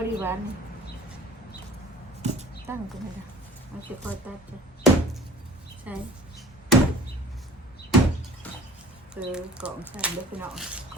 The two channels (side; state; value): both; normal; correlation 0.45